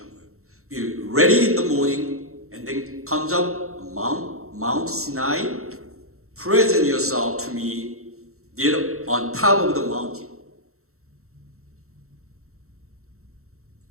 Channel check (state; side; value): late; left; 0.63 ms